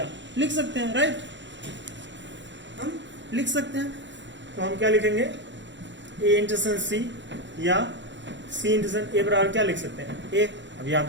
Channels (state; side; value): late; left; 0.53 ms